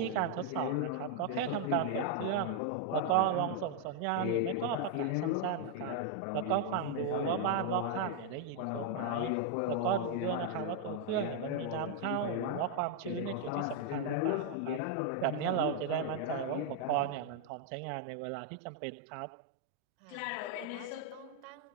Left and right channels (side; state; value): both; different; correlation 0.00